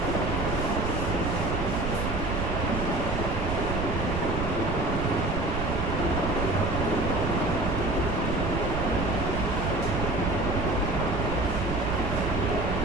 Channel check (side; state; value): right; noise; rumble, 2 dB below the sound